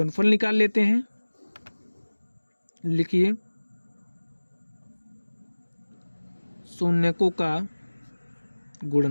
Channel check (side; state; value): both; inverted; correlation -1.00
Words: निकाल लेते हैं। लिखिए शून्यकों का